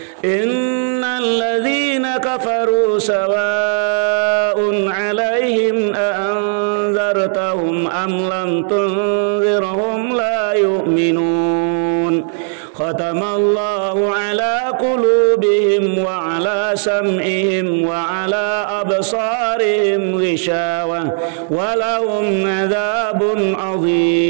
Innal ladzina kafaru sawa'un 'alaihim a anzartahum am lam tunzirhum la yu'minun. ختم الله على قلوبهم وعلى سمعهم وعلى أبصارهم غشاوة ولهم عذاب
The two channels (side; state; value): left; silent; digital silence